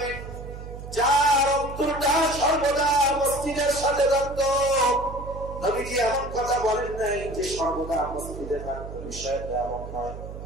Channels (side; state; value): right; noise; hum, 11 dB below the sound